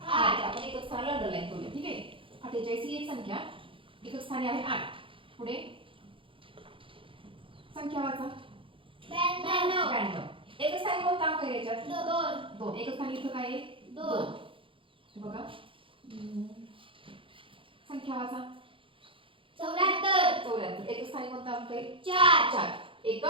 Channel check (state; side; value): late; left; 0.25 ms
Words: 8. आपण एकच स्थानाला अंडरलाईन करूया. ठीक आहे. 48 ही एक संख्या एकच स्थानी आहे 8. पुढे संख्या वाचा. 92. एकच स्थानी कोणता अंक आहे याच्यात? 2. एकच स्थानी इथं काय आहे? 2. बघा. संख्या वाचा. 74. एकच स्थानी कोणता अंक आहे? 4.